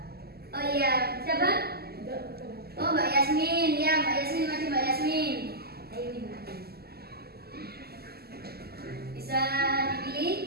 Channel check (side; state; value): left; late; 0.46 ms